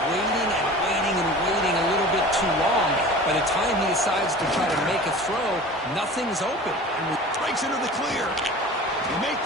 waiting and waiting and waiting a little bit too long. By the time he decides to try to make a throw, nothing's open. And breaks into the clear. He make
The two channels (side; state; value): both; normal; correlation 0.39